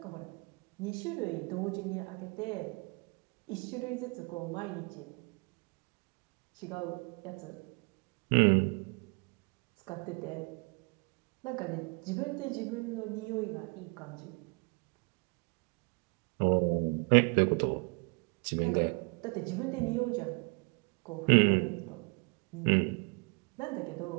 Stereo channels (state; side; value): quieter; left; 32.4 dB